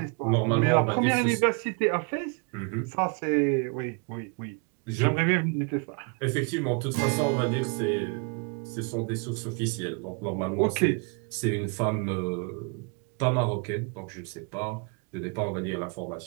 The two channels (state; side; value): quieter; left; 33.7 dB